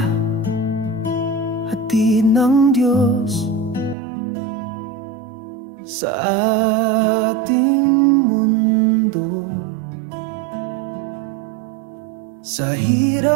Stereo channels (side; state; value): left; drops out; at 4.0 s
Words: hatid ng Diyos sa ating mundo. Sa